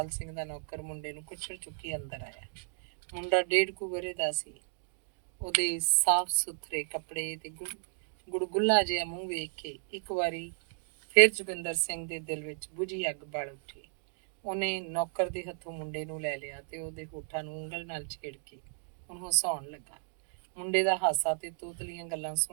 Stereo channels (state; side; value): silent; left; digital silence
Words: ਸਿੰਘ ਦਾ ਨੌਕਰ ਮੁੰਡੇ ਨੂੰ ਕੁੱਛੜ ਚੁੱਕੀ ਅੰਦਰ ਆਇਆ। ਮੁੰਡਾ 1.5 ਕੁ ਵਰ੍ਹੇ ਦਾ ਸੀ। ਉਹਦੇ ਸਾਫ਼ ਸੁਥਰੇ ਕੱਪੜੇ ਤੇ ਗੁੜਗੁੱਲਾ ਜਿਹਾ ਮੂੰਹ ਵੇਖ ਕੇ ਇੱਕ ਵਾਰੀ ਫਿਰ ਜੋਗਿੰਦਰ ਸਿੰਘ ਦੇ ਦਿਲ ਵਿੱਚ ਬੁਝੀ ਅੱਗ ਬਲ ਉੱਠੀ। ਉਹਨੇ ਨੌਕਰ ਦੇ ਹੱਥੋਂ ਮੁੰਡੇ ਨੂੰ ਲੈ ਲਿਆ ਤੇ ਉਹਦੇ ਹੋਠਾਂ ਨੂੰ ਉਂਗਲ ਨਾਲ ਛੇੜ ਕੇ ਉਹਨੂੰ ਹਸਾਉਣ ਲੱਗਾ। ਮੁੰਡੇ ਦਾ ਹਾਸਾ ਤੇ ਤੋਤਲੀਆਂ ਗੱਲਾਂ